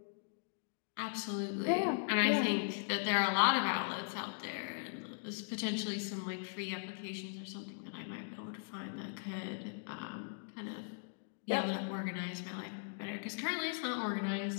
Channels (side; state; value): right; silent; digital silence